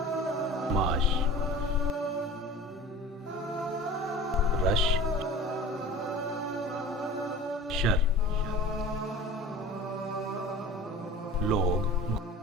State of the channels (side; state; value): both; normal; correlation 0.39